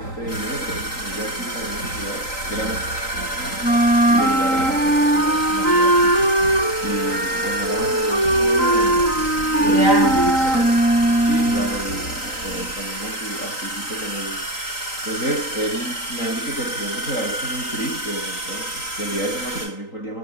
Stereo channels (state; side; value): late; right; 3.9 ms